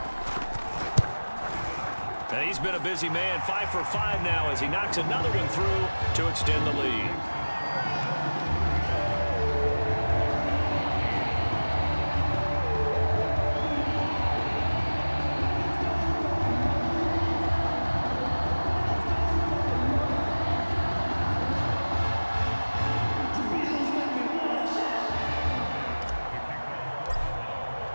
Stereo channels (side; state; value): both; inverted; correlation -1.00